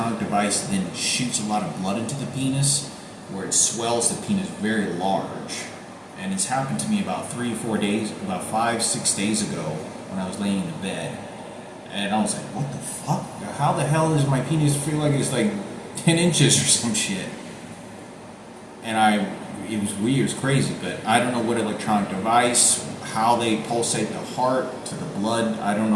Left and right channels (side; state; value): both; identical; correlation 1.00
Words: device that then shoots a lot of blood into the penis, where it swells the penis very large. And it's happened to me about 5-6 days ago, when I was laying in the bed, and I was like, what the fuck? How the hell does my penis feel like it's like 10 inches or some shit? and it was weird, it was crazy, but I don't know what electronic device, how they pulsate the heart to the blood. I don't